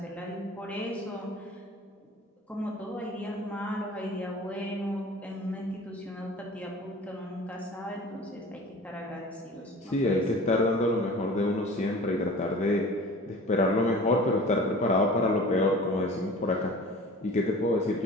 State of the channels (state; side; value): normal; both; correlation 0.42